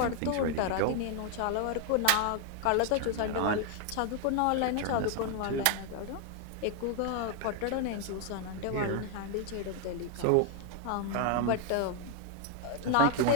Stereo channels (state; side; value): different; both; correlation 0.00